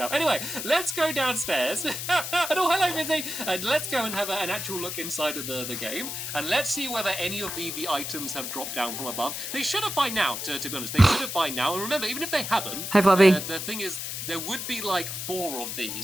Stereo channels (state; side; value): noise; left; hiss, 5 dB below the sound